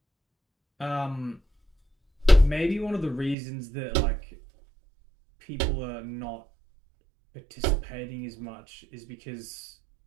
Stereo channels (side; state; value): left; drops out; at 3.4 s